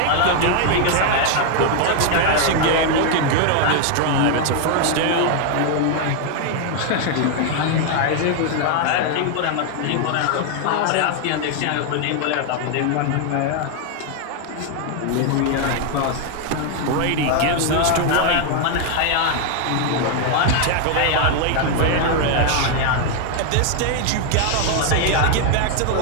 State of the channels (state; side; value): different; both; correlation 0.00